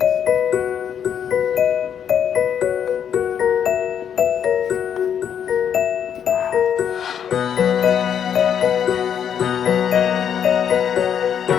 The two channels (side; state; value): right; quieter; 8.5 dB